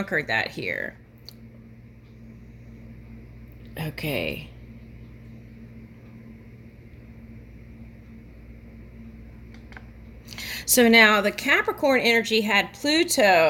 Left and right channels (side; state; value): both; identical; correlation 1.00